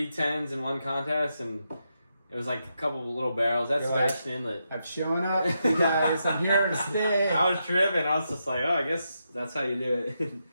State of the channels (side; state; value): both; inverted; correlation -0.84